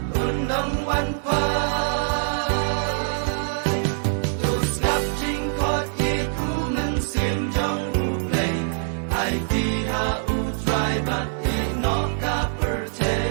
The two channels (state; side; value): silent; left; digital silence